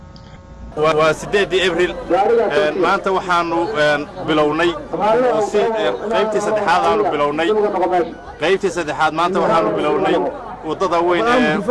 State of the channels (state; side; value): identical; both; correlation 1.00